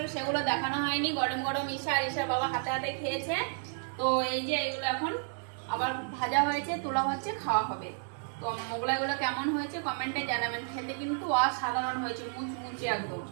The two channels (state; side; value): silent; left; 57 dB below the other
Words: সেগুলো দেখানো হয়নি। গরম গরম ঈশা আর ঈশার বাবা হাতে হাতে খেয়েছে। তো এই যে এগুলো এখন আবার ভাজা হয়েছে, তোলা হচ্ছে, খাওয়া হবে। তো মোগলাইগুলো কেমন হয়েছে কমেন্টে জানাবেন। খেতে কিন্তু অসাধারণ হয়েছে, মুচমুচে একদম।